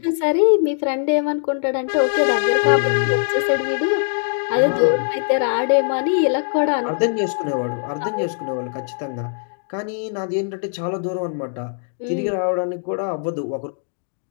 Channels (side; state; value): right; silent; digital silence